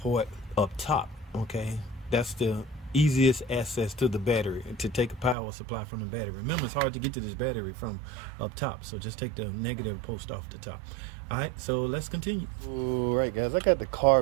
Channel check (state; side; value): drops out; left; at 5.4 s